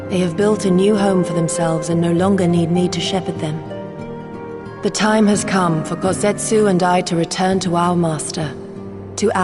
They have built a new home for themselves and no longer need me to shepherd them. The time has come for Kozetsu and I to return to our master, to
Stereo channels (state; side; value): identical; both; correlation 1.00